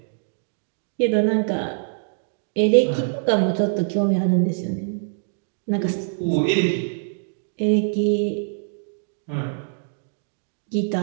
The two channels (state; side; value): silent; left; digital silence